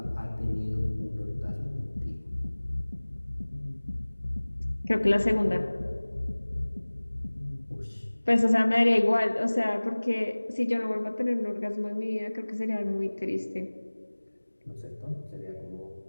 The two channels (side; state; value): both; inverted; correlation -1.00